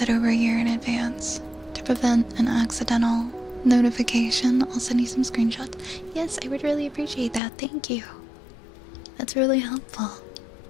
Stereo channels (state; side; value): drops out; right; at 7.4 s